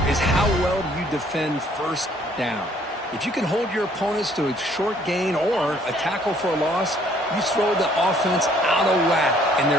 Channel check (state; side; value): normal; both; correlation 0.62